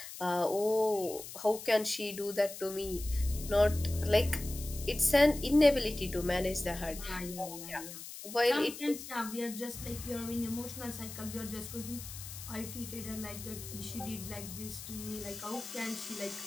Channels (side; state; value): left; noise; hiss, 11 dB below the sound